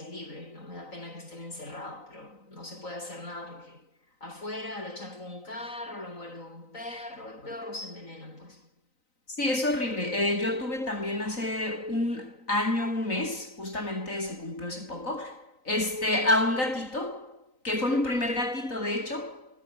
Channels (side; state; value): right; late; 3.9 ms